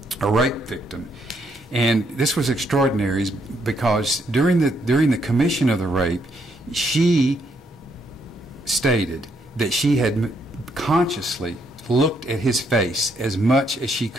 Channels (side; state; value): both; normal; correlation 0.74